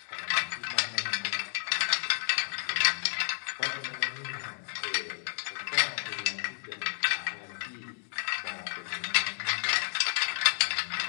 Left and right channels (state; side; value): silent; right; 55 dB below the other